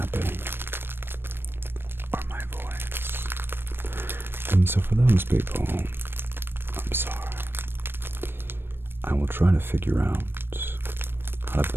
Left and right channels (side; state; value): left; late; 0.10 ms